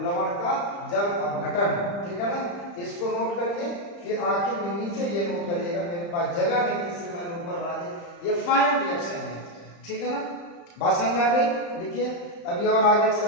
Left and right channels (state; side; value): late; right; 35 ms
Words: लवण का जल अपघटन, ठीक है ना। इसको नोट करिए, फिर आखिर में नीचे ये नोट करिएगा, मेरे पास जगह नहीं थी इसलिए मैंने ऊपर बना दिया। ये फाइनल रिएक्शन है, ठीक है ना, बात समझ में आ गई। लिखिए, अभी और आगे